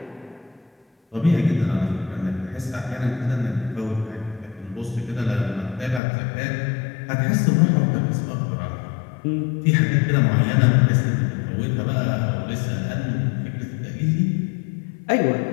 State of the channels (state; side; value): drops out; right; at 6.0 s